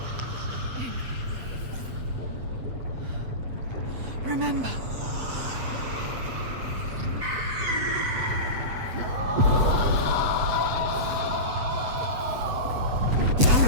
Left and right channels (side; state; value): left; late; 8.0 ms